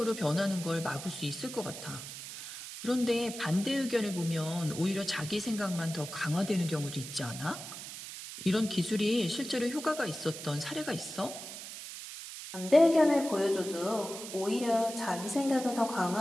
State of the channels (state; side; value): noise; right; hiss, 10 dB below the sound